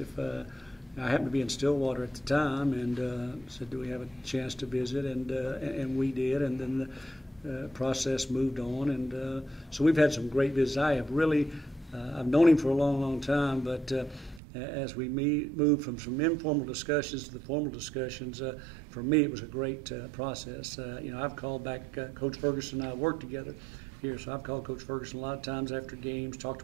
I happened to be in Stillwater at the time, and said, "Do we have a chance to visit?" And we did, and then the process moved on, and so we've had some great visits. I have really, I've known him for a long, long time, but as we moved from some informal discussions to the formal discussions, for me it was a great process. I've called back Coach Ferguson and I worked together here, so I've called Coach Ferguson a lot of times after games, talked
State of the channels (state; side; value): drops out; left; at 14.4 s